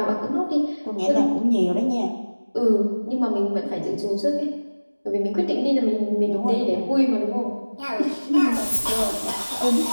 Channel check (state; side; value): inverted; both; correlation -1.00